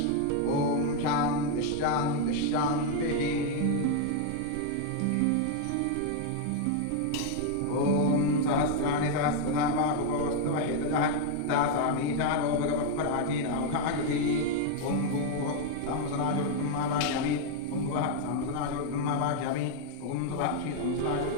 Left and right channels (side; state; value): both; different; correlation 0.00